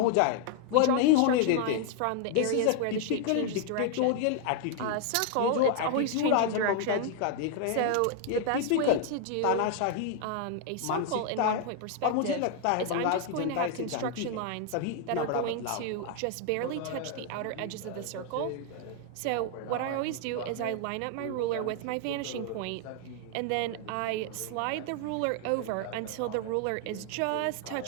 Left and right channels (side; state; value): both; different; correlation 0.00